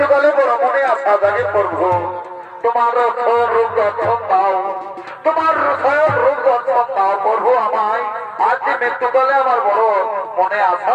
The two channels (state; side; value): identical; both; correlation 1.00